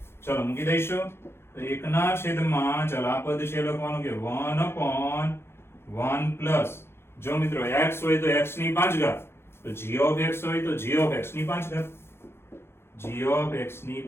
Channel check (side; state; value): right; late; 0.12 ms